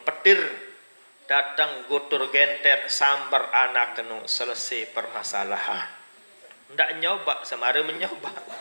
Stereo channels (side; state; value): both; inverted; correlation -1.00